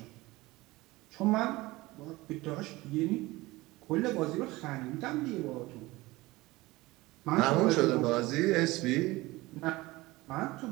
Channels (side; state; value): left; quieter; 20.3 dB